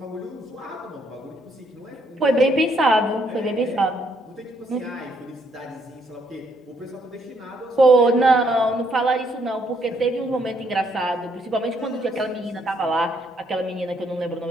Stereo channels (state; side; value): normal; both; correlation 0.71